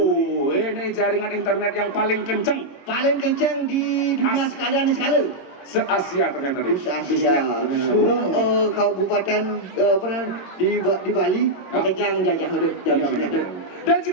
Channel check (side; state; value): right; late; 22 ms